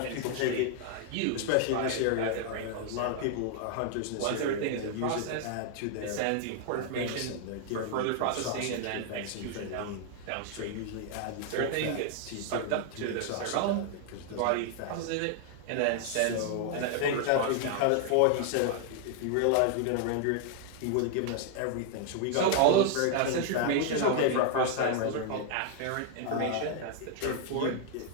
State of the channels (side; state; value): both; different; correlation 0.00